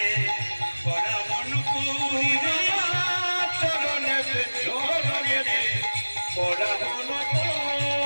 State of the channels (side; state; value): both; inverted; correlation -1.00